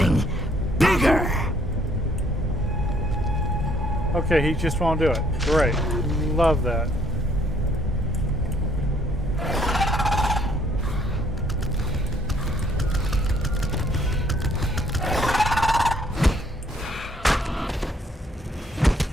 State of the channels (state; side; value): normal; both; correlation 0.64